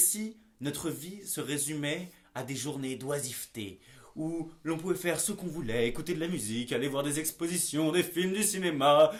notre vie se résumait à des journées d'oisiveté, où l'on pouvait faire ce qu'on voulait, écouter de la musique, aller voir des expositions, des films, du cinéma,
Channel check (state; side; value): identical; both; correlation 1.00